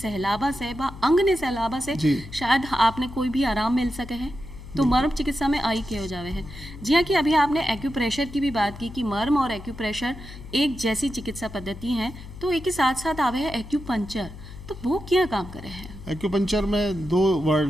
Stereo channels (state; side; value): noise; left; hum, 14 dB below the sound